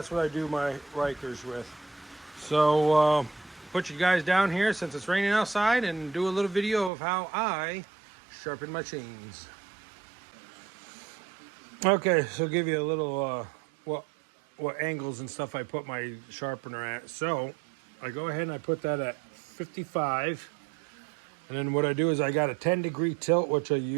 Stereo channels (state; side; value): drops out; left; at 6.9 s